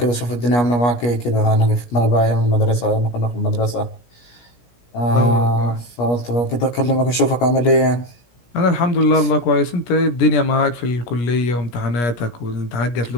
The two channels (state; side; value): late; right; 17 ms